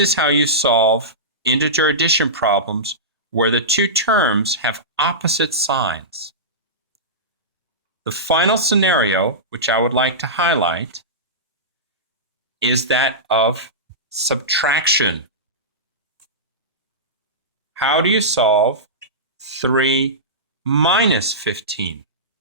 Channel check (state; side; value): normal; both; correlation -0.17